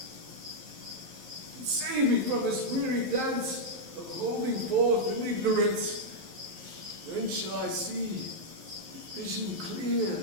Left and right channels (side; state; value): left; late; 11 ms